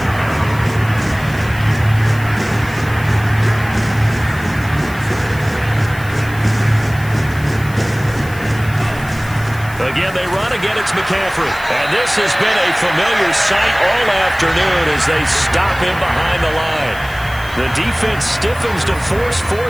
Again, they run. Again, it's McCaffrey. And this has been a familiar sight all afternoon as they stop him behind the line. The defense stiffens to force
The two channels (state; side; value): noise; left; hiss, 19 dB below the sound